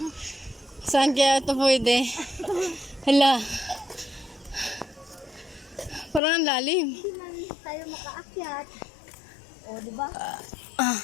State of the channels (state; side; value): drops out; right; at 6.2 s